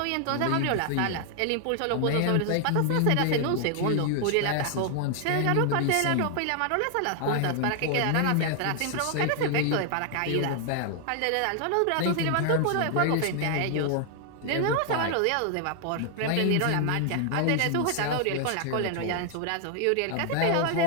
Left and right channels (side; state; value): both; different; correlation 0.00